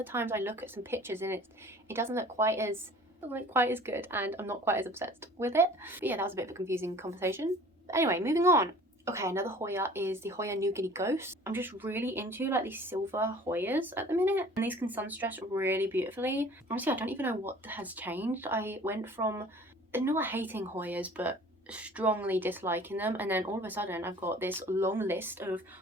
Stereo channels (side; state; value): both; normal; correlation 0.48